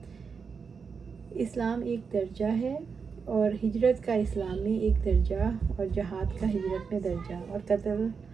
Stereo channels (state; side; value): quieter; left; 5.6 dB